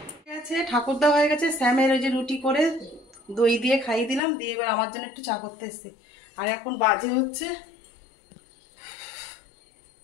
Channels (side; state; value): right; drops out; at 4.2 s